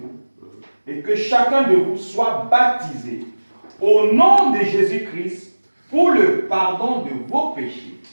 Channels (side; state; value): both; inverted; correlation -1.00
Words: et que chacun de vous soit baptisé au nom de Jésus-Christ pour le pardon de vos péchés,